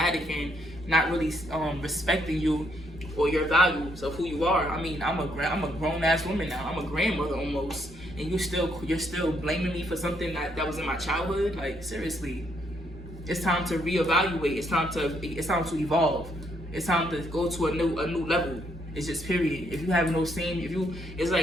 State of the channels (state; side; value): normal; both; correlation 0.72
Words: and not really respecting you or your values of who you are. I mean, I'm a grown ass woman now. I'm a grandmother almost, and you're still blaming me for something that was in my childhood. Like, seriously, it's time to reevaluate. It's time to evolve. It's time to go to a new level. It's just period. If you have no it's